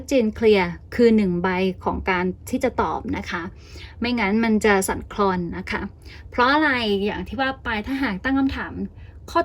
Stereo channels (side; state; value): both; identical; correlation 1.00